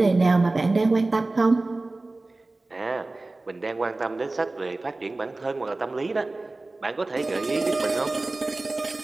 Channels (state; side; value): quieter; left; 3.1 dB